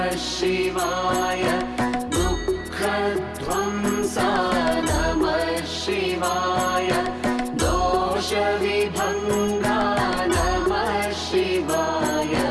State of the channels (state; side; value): identical; both; correlation 1.00